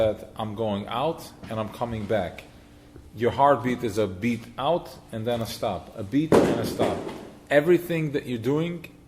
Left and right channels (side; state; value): both; identical; correlation 1.00